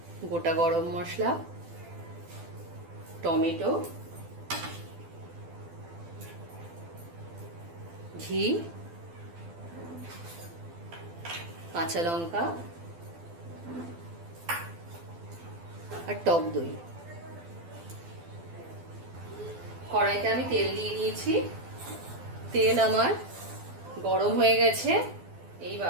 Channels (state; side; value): late; left; 12 ms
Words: গোটা গরম মশলা, টমেটো, ঘি, কাঁচা লঙ্কা আর টক দই। কড়াইতে আমি তেল দিয়ে দিয়েছি, তেল আমার গরম হয়ে গেছে।